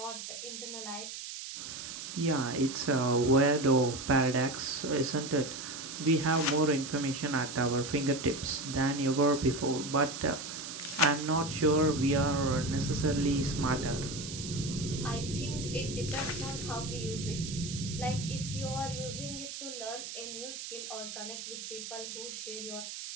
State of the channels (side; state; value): right; noise; hiss, 9 dB below the sound